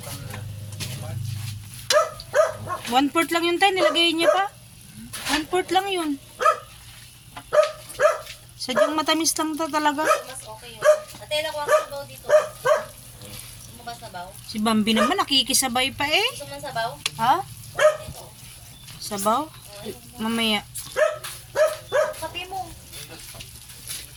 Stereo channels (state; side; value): identical; both; correlation 1.00